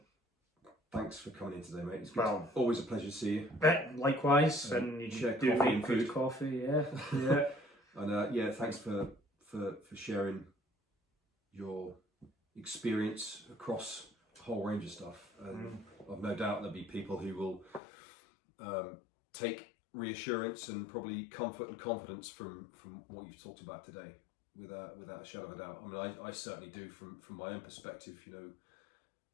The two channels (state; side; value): drops out; right; at 17.8 s